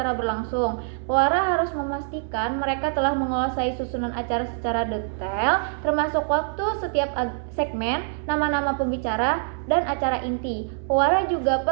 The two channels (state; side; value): silent; left; 62 dB below the other